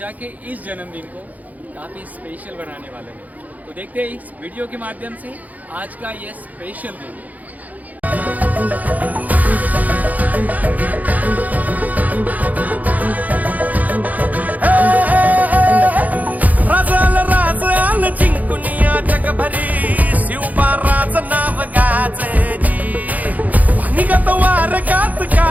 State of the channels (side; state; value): left; late; 0.078 ms